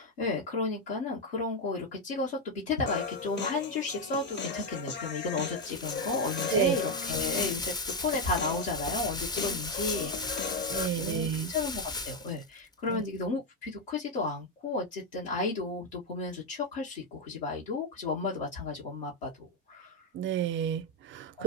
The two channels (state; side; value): normal; both; correlation 0.04